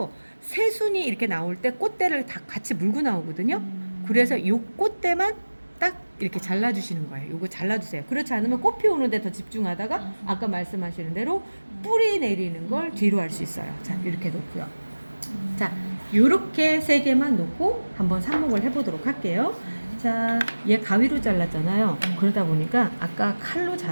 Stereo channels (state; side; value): inverted; both; correlation -1.00